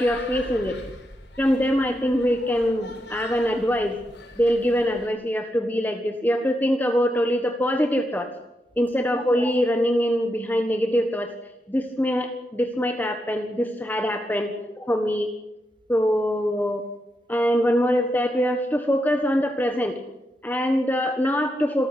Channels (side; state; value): both; normal; correlation 0.84